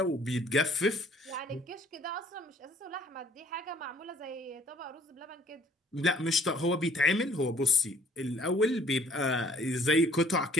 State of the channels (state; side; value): normal; both; correlation 0.58